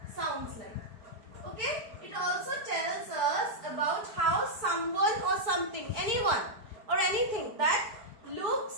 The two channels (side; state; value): left; late; 4.6 ms